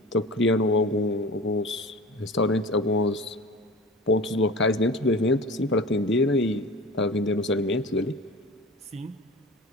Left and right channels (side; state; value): both; normal; correlation 0.36